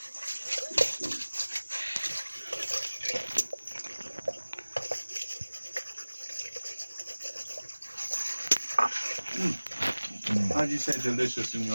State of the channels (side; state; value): both; inverted; correlation -1.00